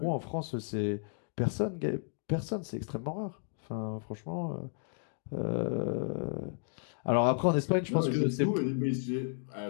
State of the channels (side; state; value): right; silent; 56 dB below the other